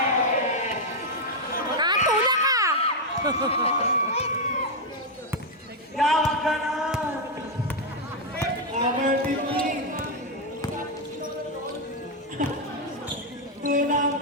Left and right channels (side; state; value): both; normal; correlation 0.01